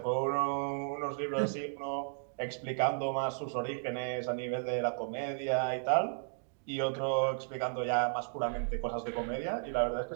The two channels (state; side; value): silent; left; digital silence